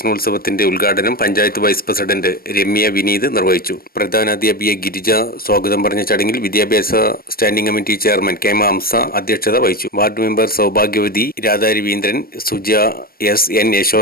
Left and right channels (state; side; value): late; right; 0.43 ms